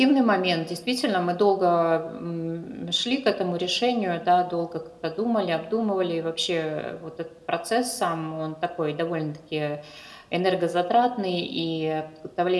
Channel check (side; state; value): both; identical; correlation 1.00